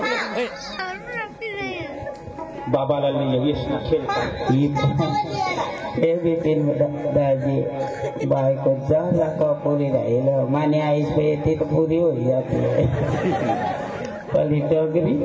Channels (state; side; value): identical; both; correlation 1.00